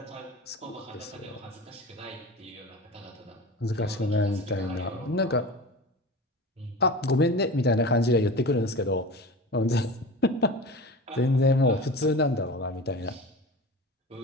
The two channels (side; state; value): both; normal; correlation 0.33